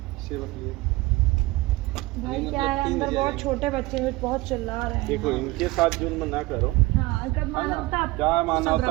सेवा के लिए। भाई मतलब क्या है, 3 अंदर बजे बहुत आएंगे। छोटे बच्चे हैं, बहुत चिल्ला रहे हैं। देखो इनके साथ जुल्म ना करो। हाँ, अगर मानवता क्या मानवता सब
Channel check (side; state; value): left; quieter; 20.7 dB